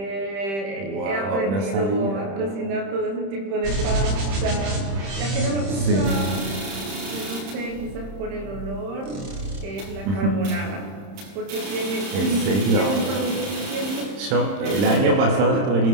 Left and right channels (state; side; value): late; left; 30 ms